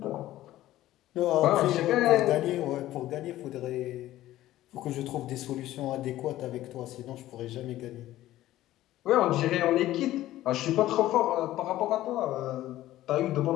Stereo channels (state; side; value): quieter; right; 14.7 dB